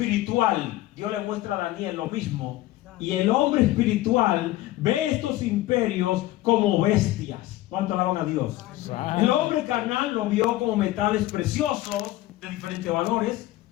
Dios le muestra a Daniel lo mismo. Y el hombre espiritual ve estos imperios como bestias. ¿Cuánto alaban a Dios? El hombre carnal lo vio como metales preciosos de diferentes valores.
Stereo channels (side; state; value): right; quieter; 16.3 dB